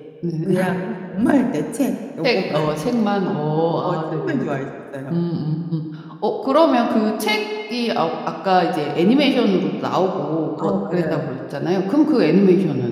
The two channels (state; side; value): identical; both; correlation 1.00